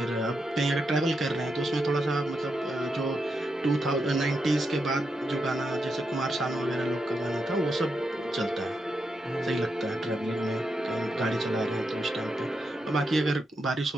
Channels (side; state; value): both; normal; correlation 0.84